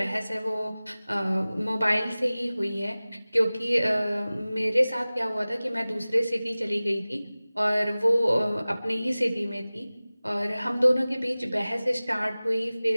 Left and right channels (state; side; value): inverted; both; correlation -0.98